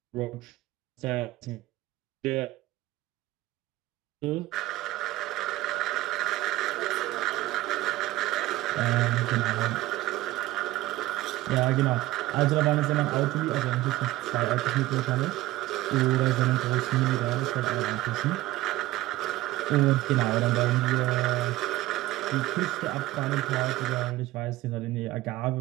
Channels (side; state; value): left; quieter; 17.4 dB